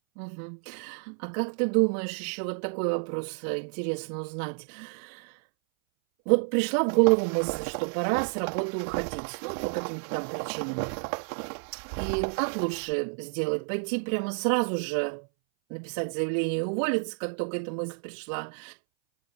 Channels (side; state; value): left; silent; 58 dB below the other